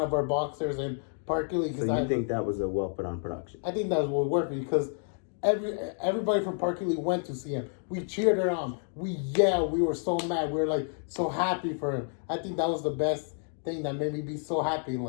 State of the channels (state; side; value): silent; right; 58 dB below the other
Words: of our boxers in Park Lee. So you think that was a well put on production? I think that was what worked because everybody from Park Lee went to see him. We cheered her on. We yelled. We were so mad. We were like so happy for him. I think that was the best thing that made me be so happy in